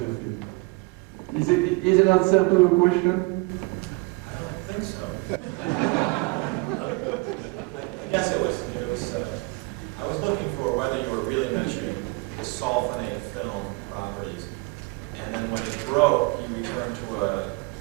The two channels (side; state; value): left; quieter; 27.1 dB